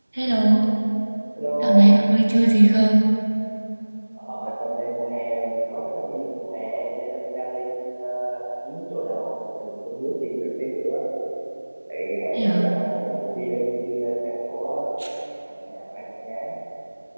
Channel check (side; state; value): both; inverted; correlation -1.00